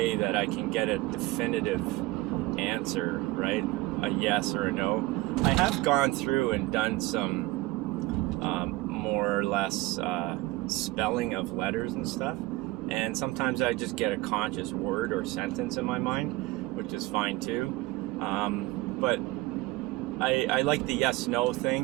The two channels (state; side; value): quieter; left; 19.7 dB